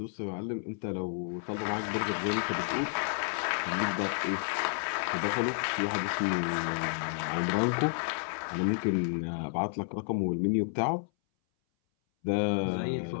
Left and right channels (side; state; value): right; silent; 57 dB below the other